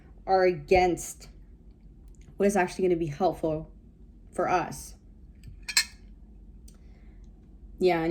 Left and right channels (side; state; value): both; identical; correlation 1.00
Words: are against what is actually going to be helpful for us. Yeah,